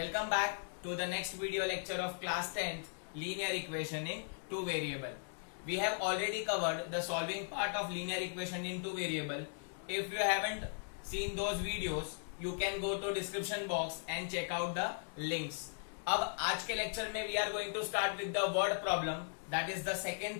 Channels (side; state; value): right; silent; digital silence